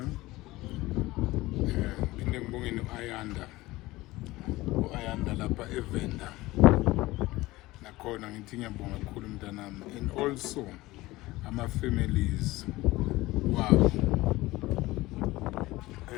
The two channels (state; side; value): quieter; right; 19.1 dB